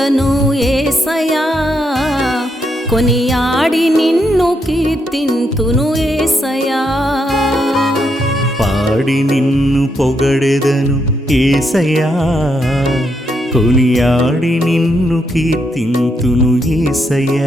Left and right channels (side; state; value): both; normal; correlation 0.79